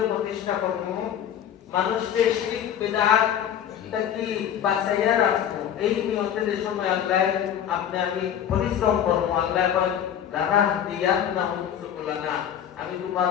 প্রতিষ্ঠা করব মানুষকে শিরক বিদআত থেকে বাঁচাইয়া রাখবো এই নিয়তে যে সময় আল্লাহ আপনি আমি পরিশ্রম করব আল্লাহ বলেন লানা দিয়াতনাহুম সুবুলানা আমি তোমার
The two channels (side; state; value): right; quieter; 9.6 dB